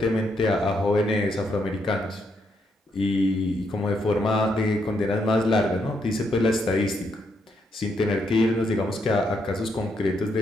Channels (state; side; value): normal; both; correlation 0.77